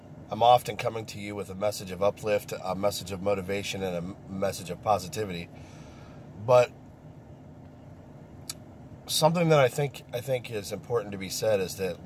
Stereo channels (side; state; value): both; identical; correlation 1.00